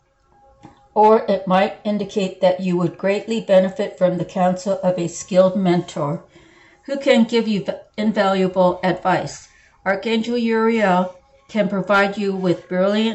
Or it might indicate that you would greatly benefit from the counsel of a skilled mentor who can give you invaluable advice. Archangel Uriel can provide you with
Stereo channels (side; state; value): both; identical; correlation 1.00